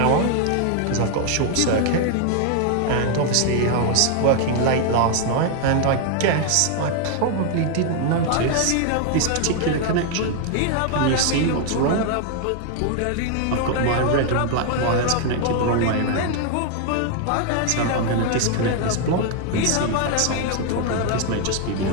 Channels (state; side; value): different; both; correlation 0.00